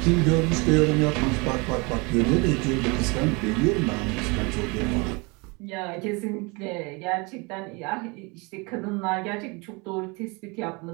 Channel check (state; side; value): quieter; left; 28.5 dB